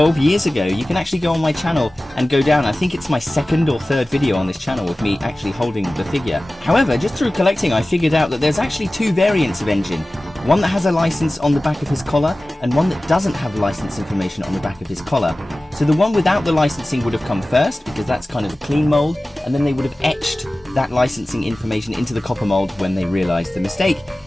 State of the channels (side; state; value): both; normal; correlation 0.97